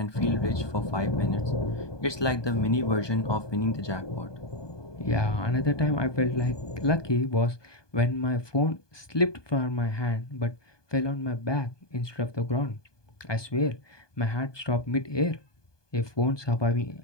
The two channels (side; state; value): right; late; 1.2 ms